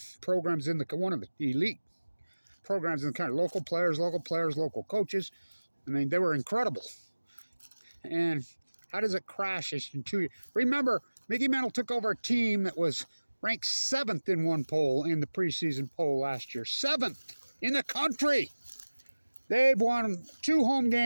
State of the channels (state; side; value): inverted; both; correlation -1.00